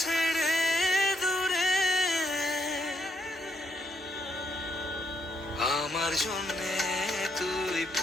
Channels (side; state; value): both; normal; correlation 0.76